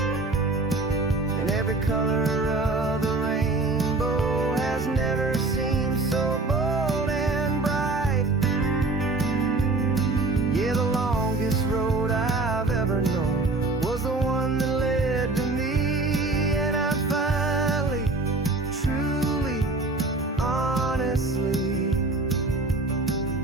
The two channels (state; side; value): quieter; left; 3.3 dB